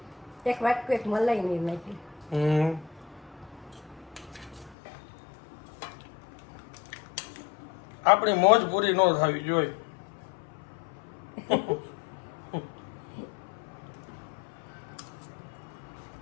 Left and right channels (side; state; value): right; drops out; at 4.8 s